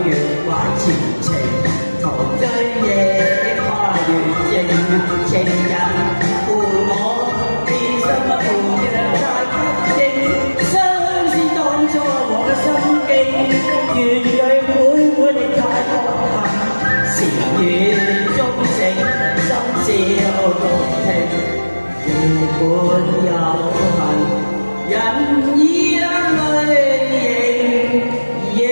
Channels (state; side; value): inverted; both; correlation -1.00